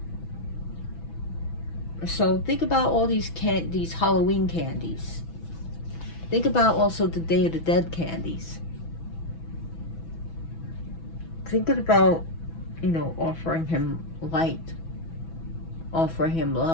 So think about all these Halloween candies. Think about also the Day of the Dead candies. Thinking about, offering him light, offering him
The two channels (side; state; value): right; late; 6.1 ms